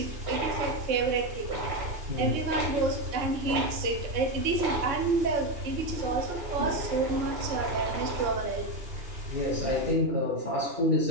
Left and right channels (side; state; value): left; late; 2.9 ms